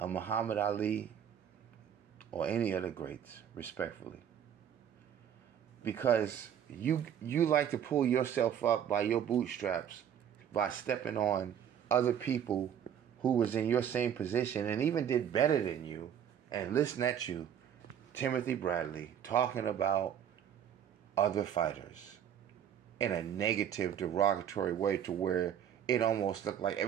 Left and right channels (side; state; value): left; quieter; 9.2 dB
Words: Muhammad Ali or any other greats, respectfully. Because you like to pull yourself up by your bootstraps by stepping on other people who was in your same position and even did better than you, and listen at you, Timothy Bradley, talking about other fighters in a negative, derogatory way to where it almost looked like